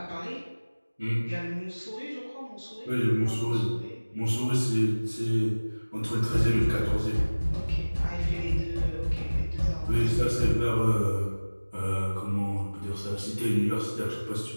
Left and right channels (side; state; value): both; inverted; correlation -1.00